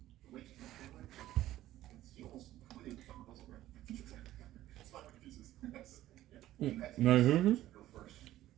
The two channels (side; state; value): left; quieter; 14.3 dB